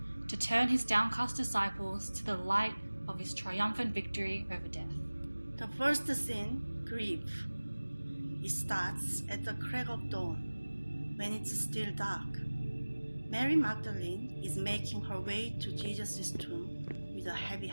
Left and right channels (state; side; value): inverted; both; correlation -1.00